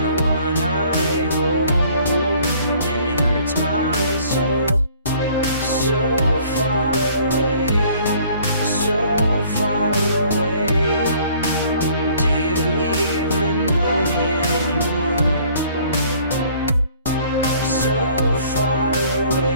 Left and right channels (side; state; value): both; inverted; correlation -0.56